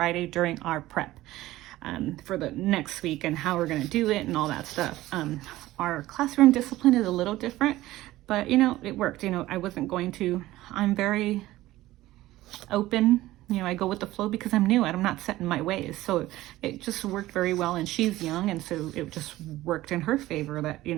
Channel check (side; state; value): left; quieter; 16.5 dB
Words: during our prep for the next week and how we're going to do it and all that stuff. Our classroom discipline is a little different, but it worked. I'm very open. I go with the flow because I'm new and I'm not set in my ways. So it just worked very well, and she's young, and so it just worked in her favor that,